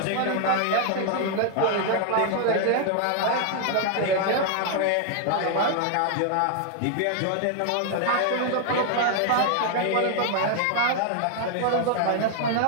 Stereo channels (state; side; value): different; both; correlation 0.00